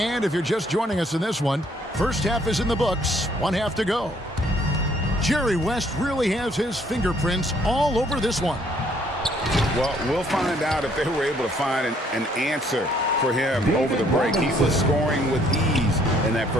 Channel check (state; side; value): normal; both; correlation 0.65